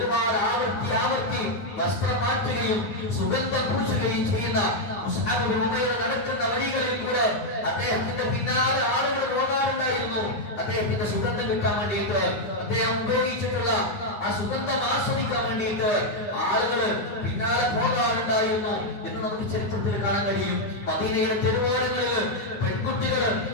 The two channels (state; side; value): late; right; 9.7 ms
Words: ആവർത്തി വസ്ത്രം മാറ്റുകയും സുഗന്ധം പൂശുകയും ചെയ്യുന്ന മുസ്അബ് ബിൻ ഉമൈർ നടക്കുന്ന വഴികളിൽ കൂടെ അദ്ദേഹത്തിന്റെ പിന്നാലെ ആളുകൾ പോകാറുണ്ടായിരുന്നു. അദ്ദേഹത്തിന്റെ സുഗന്ധം കിട്ടാൻ വേണ്ടിയിട്ട്, അദ്ദേഹം ഉപയോഗിച്ചിട്ടുള്ള ആ സുഗന്ധം ആസ്വദിക്കാൻ വേണ്ടിയിട്ട് ആളുകൾ പിന്നാലെ പോകാറുണ്ടായിരുന്നു എന്ന് നമുക്ക് ചരിത്രത്തിൽ കാണാൻ കഴിയും. മദീനയുടെ തെരുവോരങ്ങളിൽ പെൺകുട്ടികൾ